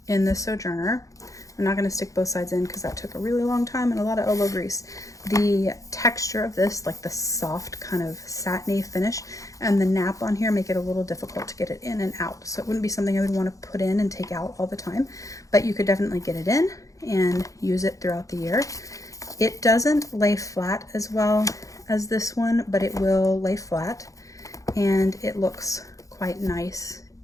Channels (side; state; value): right; late; 0.16 ms